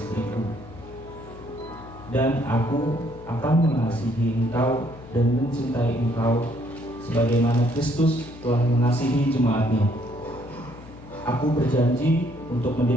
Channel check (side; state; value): left; noise; hum, 18 dB below the sound